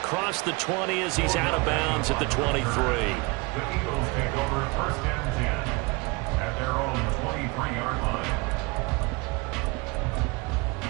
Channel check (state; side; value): quieter; left; 26.7 dB